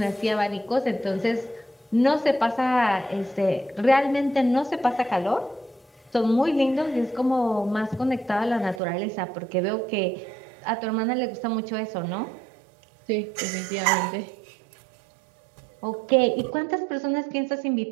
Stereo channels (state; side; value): drops out; left; at 8.8 s